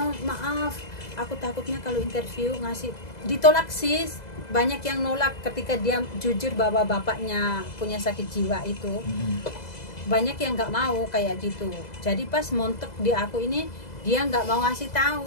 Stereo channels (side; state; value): right; late; 2.0 ms